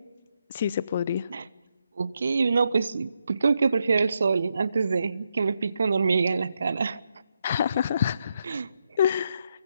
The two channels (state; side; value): inverted; both; correlation -0.82